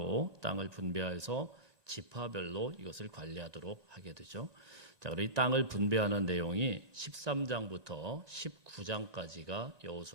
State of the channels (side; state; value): left; late; 1.9 ms